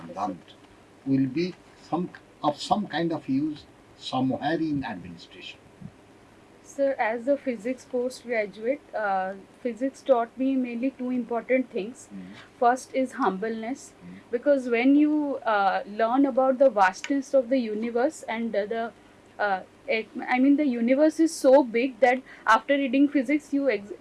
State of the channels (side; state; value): both; identical; correlation 1.00